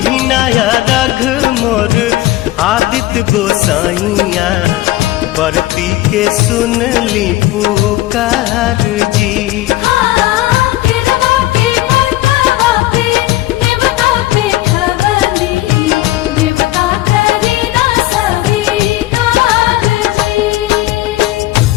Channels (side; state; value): right; quieter; 16.3 dB